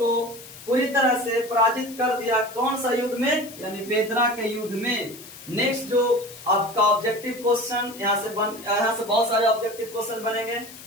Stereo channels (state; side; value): noise; left; hiss, 17 dB below the sound